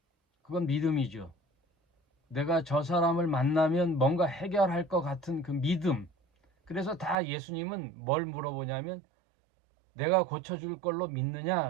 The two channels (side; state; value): left; drops out; at 7.2 s